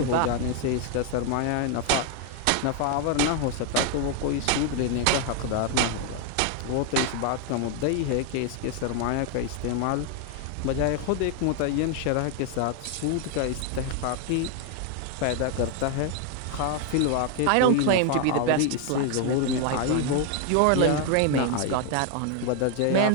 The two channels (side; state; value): both; different; correlation 0.00